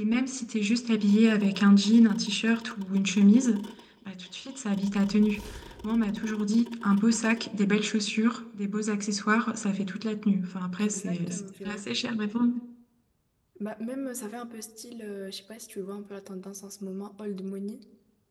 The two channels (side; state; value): both; identical; correlation 1.00